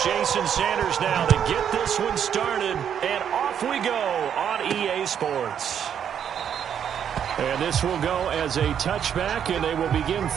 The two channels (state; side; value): quieter; left; 8.7 dB